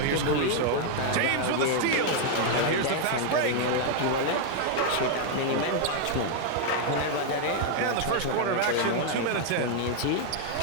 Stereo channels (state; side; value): different; both; correlation 0.00